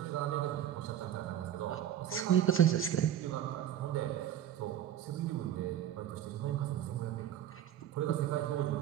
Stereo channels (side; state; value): left; quieter; 10.8 dB